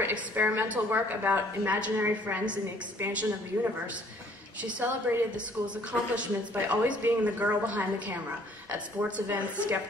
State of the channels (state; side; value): normal; both; correlation 0.59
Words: experimental work about imaginary friends and the expansion of the universe, she celebrated the school's accomplishments by always being the girl behind the camera at sports events,